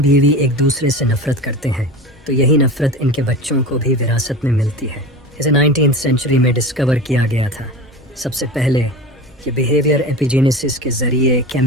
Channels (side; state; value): both; normal; correlation 0.32